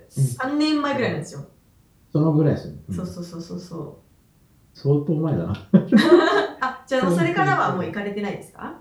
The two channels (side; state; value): both; identical; correlation 1.00